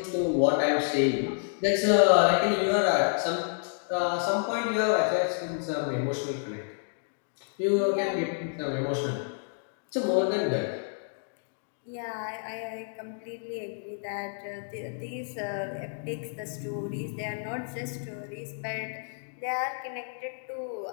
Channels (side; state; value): right; silent; digital silence